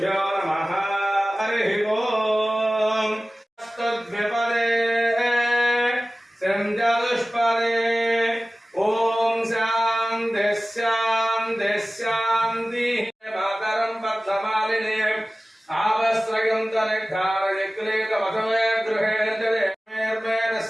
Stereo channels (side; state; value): both; normal; correlation 0.97